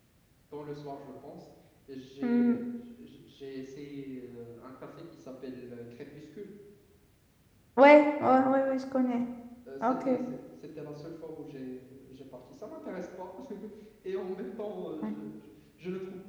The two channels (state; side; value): identical; both; correlation 1.00